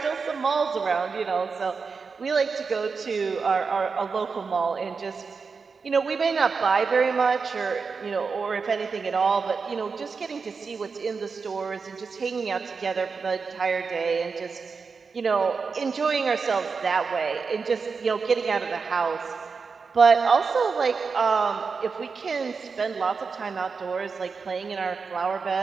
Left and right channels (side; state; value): left; quieter; 5.0 dB